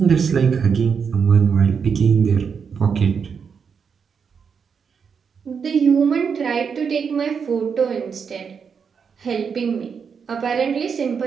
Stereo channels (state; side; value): quieter; left; 6.3 dB